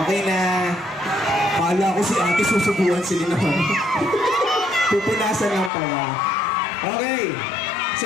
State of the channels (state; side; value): drops out; right; at 5.7 s